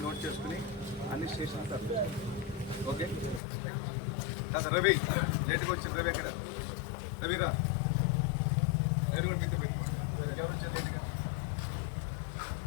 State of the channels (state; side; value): drops out; right; at 3.4 s